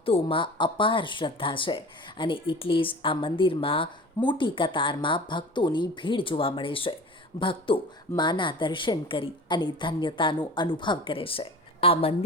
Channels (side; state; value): both; normal; correlation 0.38